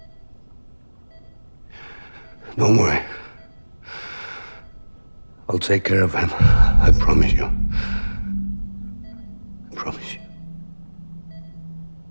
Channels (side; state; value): both; inverted; correlation -1.00